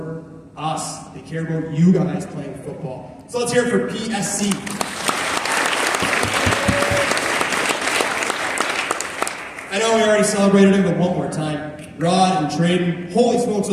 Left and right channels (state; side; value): identical; both; correlation 1.00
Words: us. They care about you guys playing football. So let's hear it for PSC. I know we already celebrated him, but one more time. Rod and Traden, holy smokes,